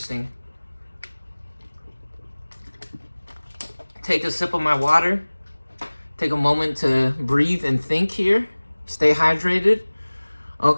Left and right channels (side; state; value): both; inverted; correlation -1.00